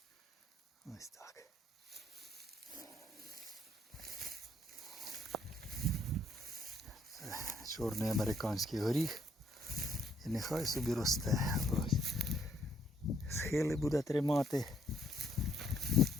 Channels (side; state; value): both; normal; correlation 0.69